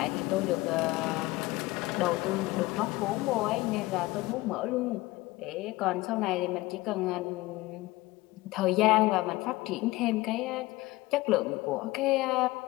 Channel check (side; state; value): right; quieter; 19.9 dB